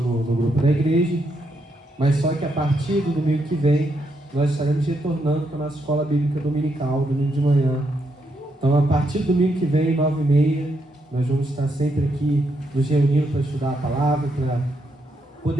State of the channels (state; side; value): normal; both; correlation 0.79